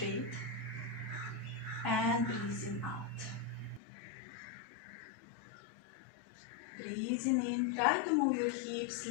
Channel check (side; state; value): right; drops out; at 3.8 s